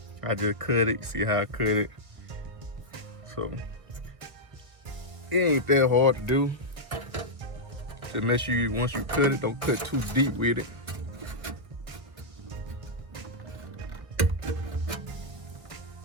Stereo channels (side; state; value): left; late; 1.4 ms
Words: I just cut it, see how I cut it. So it ain't that hard to do. Just make sure once you cut it, don't cut too deep with it.